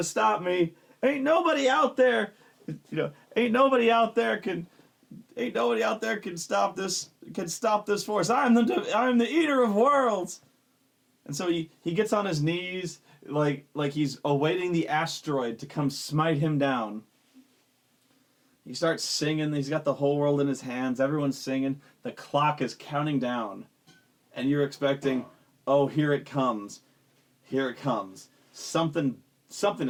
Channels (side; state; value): both; identical; correlation 1.00